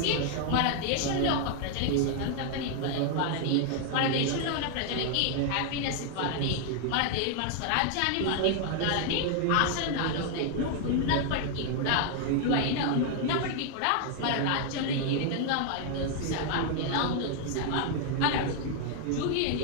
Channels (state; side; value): different; both; correlation 0.00